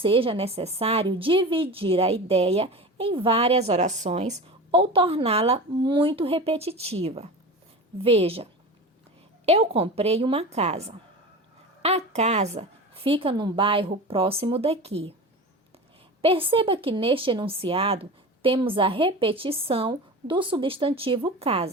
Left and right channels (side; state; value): both; normal; correlation 0.30